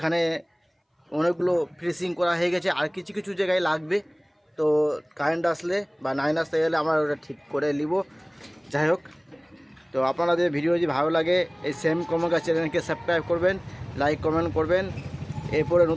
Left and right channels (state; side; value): identical; both; correlation 1.00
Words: অনেকগুলো ফিনিশিং করা হয়ে গেছে, আর কিছু কিছু জায়গায় লাগবে। তো কারেন্ট আসলে বা লাইন আসতে গেলে আমরা ওটা ঠিক করে নিব। যাই হোক, তো আপনাদের ভিডিও যদি ভালো লাগে এই সেম কমকা চ্যানেলকে সাবস্ক্রাইব করবেন, লাইক কমেন্ট করবেন। এরপরে